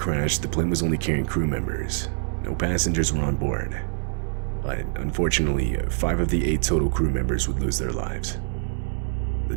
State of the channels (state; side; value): silent; left; 59 dB below the other